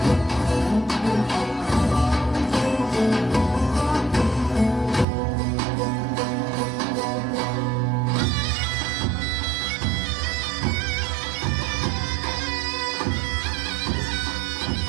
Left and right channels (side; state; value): left; drops out; at 5.1 s